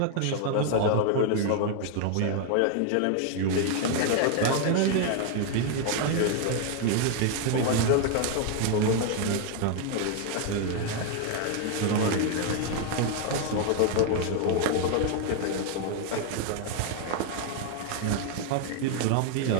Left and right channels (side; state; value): both; different; correlation 0.00